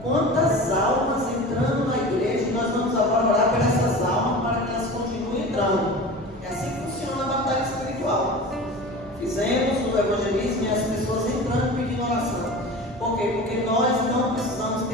Quantas almas entrando na igreja, e nós vamos agora orar por essas almas para que elas continuem entrando. É assim que funciona a batalha espiritual. Fizemos o evangelismo e as pessoas entrando pedindo oração. Por quê? Porque nós não precisamos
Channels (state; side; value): normal; both; correlation 0.34